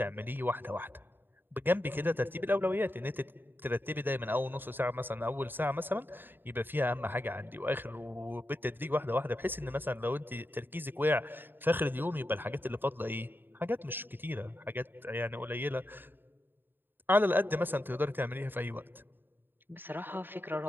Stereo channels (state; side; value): late; left; 0.096 ms